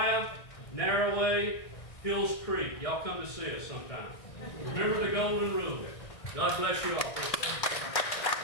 Narrowway, Hills Creek. Y'all come to see us sometime. Remember the golden rule. God bless you all.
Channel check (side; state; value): right; late; 1.8 ms